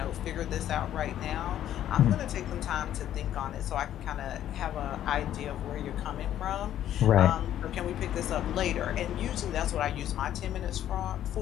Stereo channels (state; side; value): quieter; right; 11.5 dB